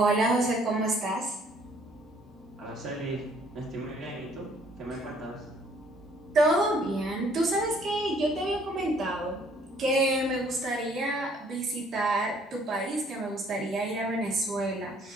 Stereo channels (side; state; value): both; normal; correlation 0.61